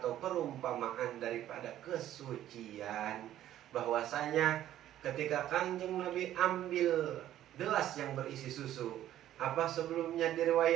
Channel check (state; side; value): quieter; left; 12.4 dB